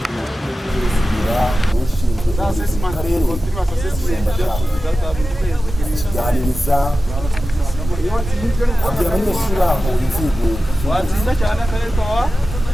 ushinzwe akarere kiganiriza abanyeshuri aho inzego watsinda cyane akarere kawa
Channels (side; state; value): both; normal; correlation 0.94